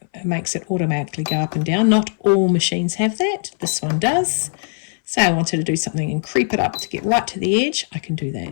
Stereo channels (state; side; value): silent; right; 60 dB below the other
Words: makes it automatically go up and down. Not all machines have that. This one does. Say I wanted to do something and creep it up to get right to the edge, I can do